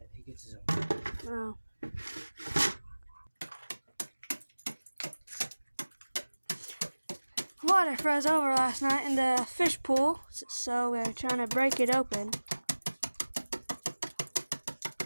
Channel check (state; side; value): inverted; both; correlation -1.00